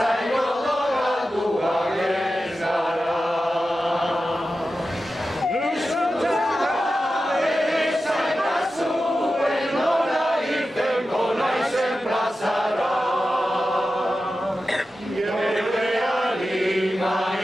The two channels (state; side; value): normal; both; correlation 0.92